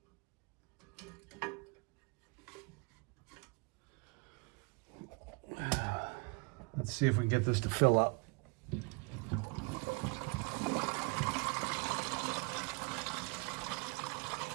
Let's see if we can get this to fill up.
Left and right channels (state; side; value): quieter; left; 30.5 dB